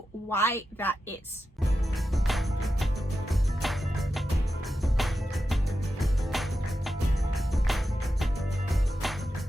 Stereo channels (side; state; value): both; normal; correlation 0.90